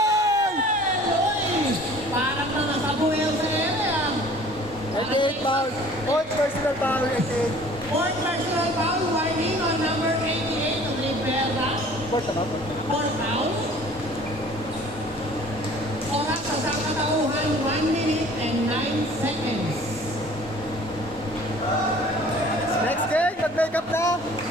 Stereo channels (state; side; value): normal; both; correlation 0.50